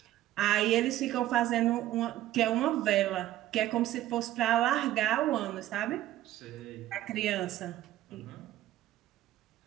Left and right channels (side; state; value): left; quieter; 14.0 dB